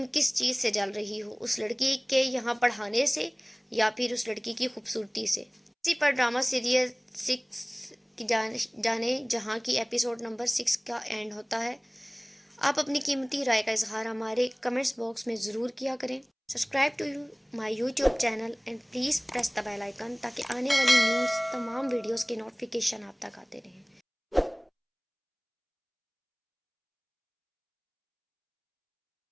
کس چیز سے جل رہی ہو، اس لڑکی کے یہاں پڑھانے سے یا پھر اس لڑکی کی خوبصورتی سے؟ اسی پر ڈرامہ سیریل 6 کی جانے جہاں کی ایپیسوڈ نمبر 6 کا اینڈ ہوتا ہے۔ آپ اپنی قیمتی رائے کا اظہار ہمارے کمنٹس باکس میں ضرور کیا کریں۔ Subscribe to my YouTube channel and please press the bell icon تاکہ آنے والی نیوز تمام ویڈیوز کے نوٹیفیکیشن آپ تک آتے رہیں.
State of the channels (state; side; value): identical; both; correlation 1.00